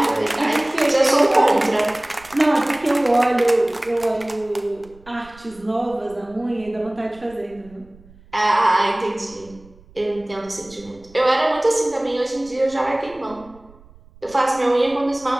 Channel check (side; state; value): right; noise; rumble, 25 dB below the sound